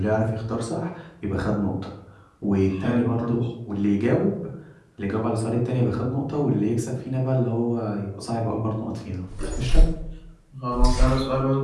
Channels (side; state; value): both; identical; correlation 1.00